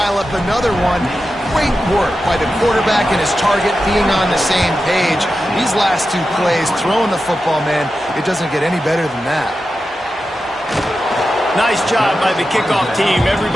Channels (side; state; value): both; normal; correlation 0.91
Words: up another one. Great work by the quarterback and his target being on the same page. These last 2 plays, throwing the football, man, it doesn't get any better than that. Nice job by the kickoff team.